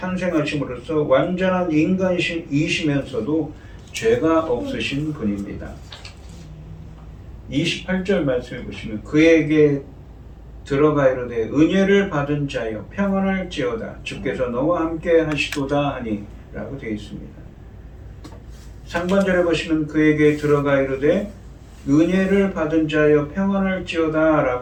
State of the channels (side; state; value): both; identical; correlation 1.00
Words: 완전한 인간이시면서도 죄가 없으신 분입니다. 28절 말씀해 보시면 그에게 들어가 이르되 은혜를 받은 자여 평안할지어다 주께서 너와 함께 하시도다 하니 라고 되어 있습니다. 상반절에 보시면 그에게 들어가 이르되 은혜를 받은 자여 평안할지어다